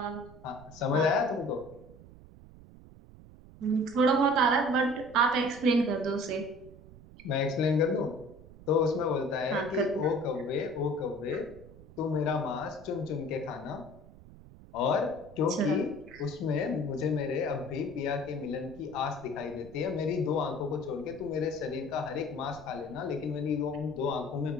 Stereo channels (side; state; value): right; noise; rumble, 19 dB below the sound